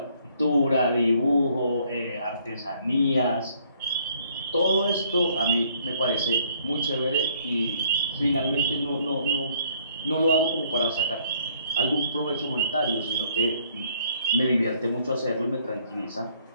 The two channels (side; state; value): both; inverted; correlation -0.64